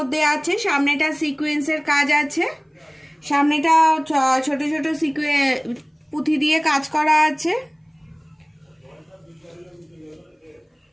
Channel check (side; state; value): both; identical; correlation 1.00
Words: আছে, সামনেটা সিকোয়েন্সের কাজ আছে, সামনেটা ছোট ছোট পুঁথি দিয়ে কাজ করা আছে।